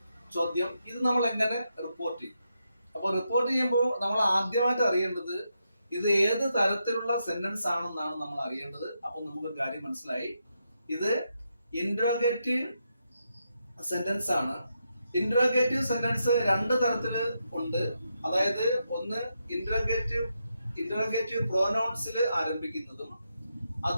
ചോദ്യം. ഇത് നമ്മൾ എങ്ങനെ റിപ്പോർട്ട് ചെയ്യും? അപ്പോൾ റിപ്പോർട്ട് ചെയ്യുമ്പോൾ നമ്മൾ ആദ്യമായിട്ട് അറിയേണ്ടത് ഇത് ഏത് തരത്തിലുള്ള സെന്റൻസ് ആണെന്നാണ് നമ്മൾ അറിയേണ്ടത്. അപ്പോൾ നമുക്കൊരു കാര്യം മനസ്സിലായി, ഇത് ഇന്ററോഗേറ്റീവ് സെന്റൻസ് ആണ്. ഇന്ററോഗേറ്റീവ് സെന്റൻസ് 2 തരത്തിൽ ഉണ്ട്. അതായത് ഒന്ന് ഇന്ററോഗേറ്റീവ് പ്രോനൗൺസിൽ ആരംഭിക്കുന്നതും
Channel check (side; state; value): both; inverted; correlation -0.83